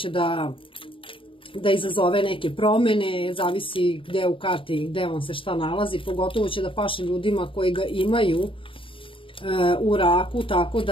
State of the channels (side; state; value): right; late; 0.25 ms